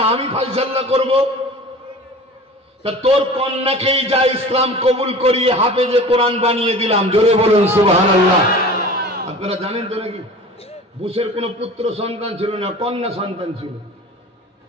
আমি ফয়সালা করব। তা তোর কন্যাকেই যা ইসলাম কবুল করিয়ে হাফেজে কোরআন বানিয়ে দিলাম, জোরে বলুন সুবহানাল্লাহ। আপনারা জানেন তো নাকি বুশের কোনো পুত্র সন্তান ছিল না, কন্যা সন্তান ছিল,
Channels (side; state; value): both; normal; correlation 0.39